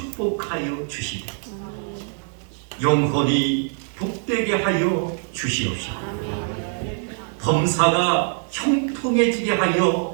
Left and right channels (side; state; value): left; silent; 56 dB below the other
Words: 주시되 영혼이 복되게 하여 주시옵시고 범사가 형통해지게